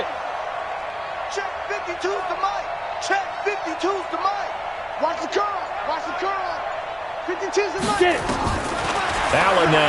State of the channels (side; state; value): both; identical; correlation 1.00